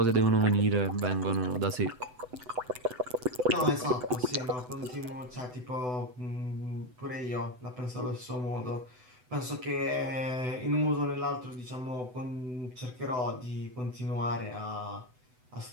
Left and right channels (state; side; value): late; left; 8.0 ms